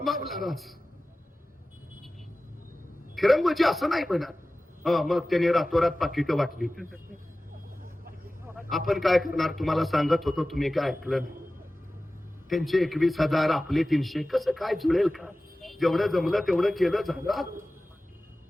राज, फिरंगोजी असं नाही म्हणत. मग त्याने रातोरात पाकिटं वाटली. आपण काय करणार, तुम्हाला सांगत होतो, तुम्ही काय ऐकलं नाही. त्यांचे 21,000 आपले 300, कसं काय जुळेल का? जेवढं जमलं तेवढं केलं, झालं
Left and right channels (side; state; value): both; normal; correlation 0.96